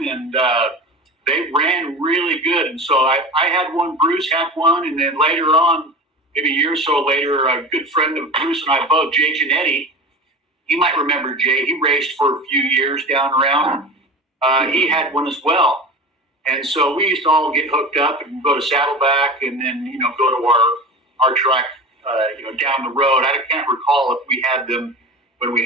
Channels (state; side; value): normal; both; correlation 0.32